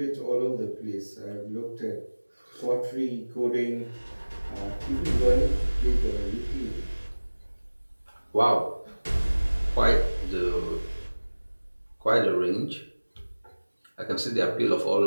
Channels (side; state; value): both; inverted; correlation -1.00